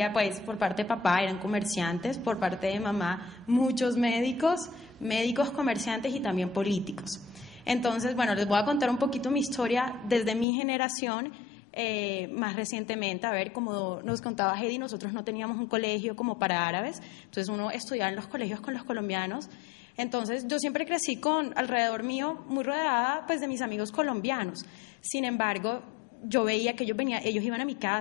pues por parte de papá eran comerciantes, por parte de mamá muchos médicos, comerciantes y también políticos. Entonces, bueno, les voy a contar un poquito mi historia desde mi generación. Más recientemente, a ver, como nos contaba Hedy, nosotros no teníamos un colegio como para árabes, entonces uno estudiaba en los colegios con los colombianos. Entonces yo siempre crecí alrededor mío, muy rodeada pues de mis amigos colombianos. Sin embargo, yo veía que ellos iban a mi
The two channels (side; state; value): right; drops out; at 10.5 s